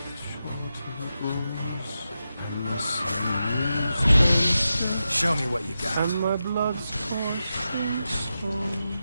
shortens, and the sun Show me what you got. and my blood's coursing stones.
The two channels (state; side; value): inverted; both; correlation -0.90